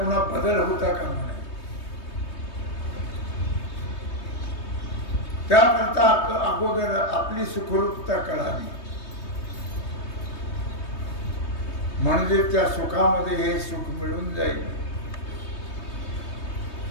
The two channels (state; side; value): late; right; 3.2 ms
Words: बदल होता का म्हणे. त्याकरता अगोदर आपली सुखरूपता कळावी, म्हणजे त्या सुखामध्ये हे सुख मिळून जाईल.